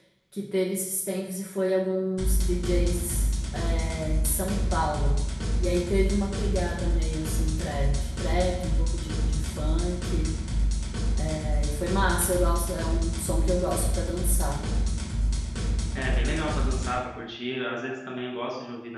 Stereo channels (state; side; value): identical; both; correlation 1.00